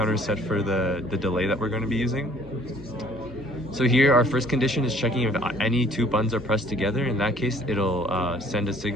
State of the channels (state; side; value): normal; both; correlation 0.57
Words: is set for the delay that we're going to be using. So here our first condition is checking if any two buttons are pressed together. In that case, it'll send a